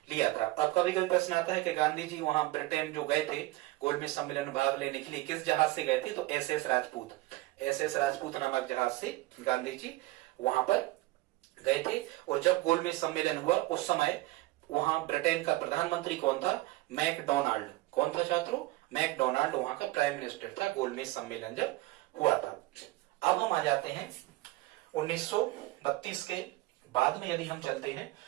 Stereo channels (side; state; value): left; quieter; 18.9 dB